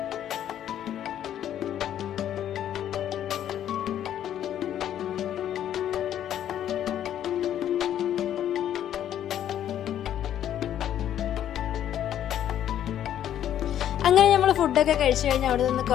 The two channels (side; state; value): right; quieter; 10.7 dB